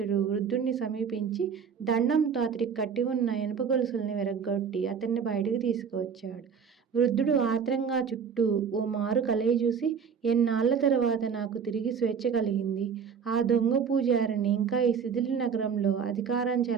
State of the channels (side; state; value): left; quieter; 6.6 dB